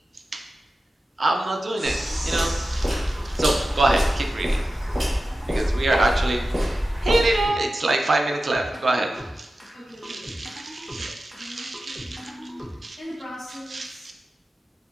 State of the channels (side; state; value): both; normal; correlation 0.94